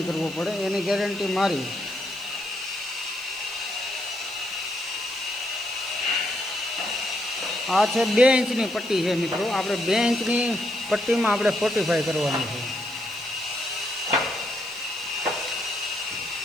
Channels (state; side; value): noise; right; hiss, 21 dB below the sound